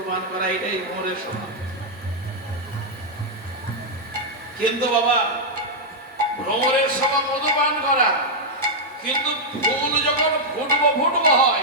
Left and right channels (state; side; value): normal; both; correlation -0.04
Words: পান করা, এটাই ভ্রমরের স্বভাব। কিন্তু বাবা ভ্রমরের স্বভাব মধু পান করা, কিন্তু ফুল যখন ফুটবো ফুটবো